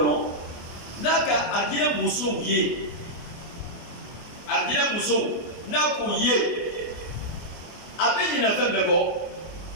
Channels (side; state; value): right; late; 24 ms